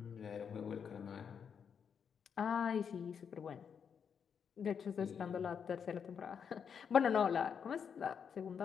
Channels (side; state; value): right; quieter; 7.1 dB